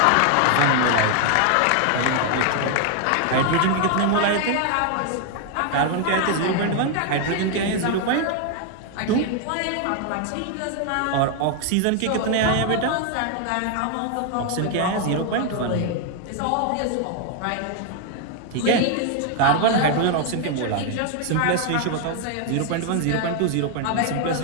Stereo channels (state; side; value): different; both; correlation 0.00